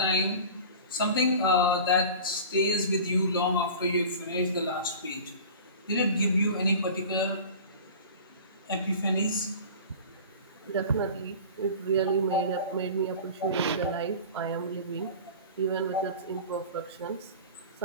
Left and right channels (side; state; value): both; inverted; correlation -0.37